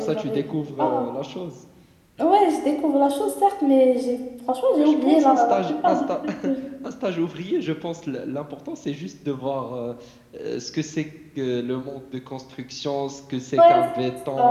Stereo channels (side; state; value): both; identical; correlation 1.00